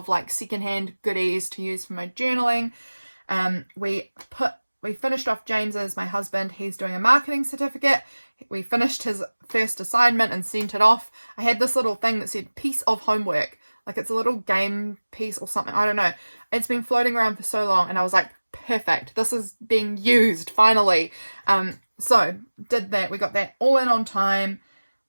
like secondhand goodies to use for my journaling. We finished off James's, my husband, he's doing a marketing certificate. We finished his first assignment and sent it off. I had this little thing that said piece of homework, like it's a little game piece or something, I don't know. It's been floating around for so long, and I was like, perfect, this is being used finally. So did that, we got that all in on time,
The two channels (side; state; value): both; inverted; correlation -1.00